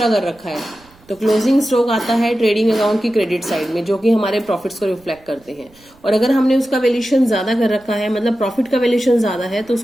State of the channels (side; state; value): right; noise; rumble, 29 dB below the sound